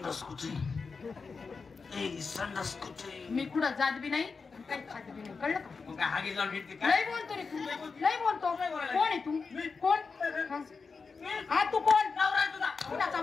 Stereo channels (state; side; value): quieter; right; 4.8 dB